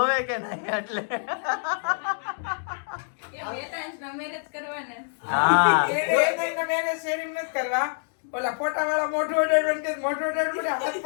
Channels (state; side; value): silent; right; digital silence